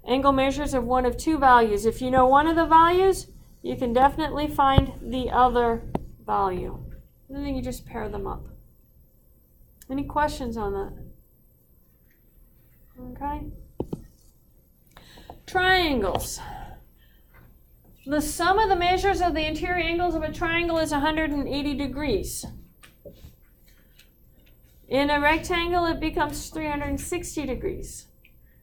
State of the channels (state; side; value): identical; both; correlation 1.00